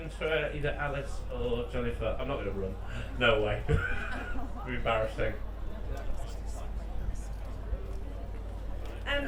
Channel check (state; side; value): identical; both; correlation 1.00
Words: for either Alice or Jennifer? I'm not going to run. No way. It'd be embarrassing.